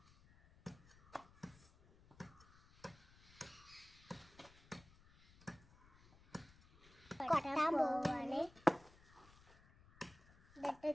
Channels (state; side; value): noise; left; rumble, 25 dB below the sound